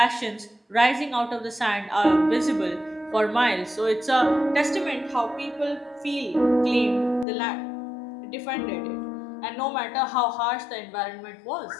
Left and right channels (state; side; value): drops out; right; at 7.2 s